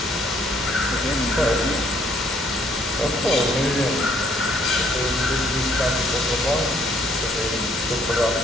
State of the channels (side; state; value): both; normal; correlation 0.65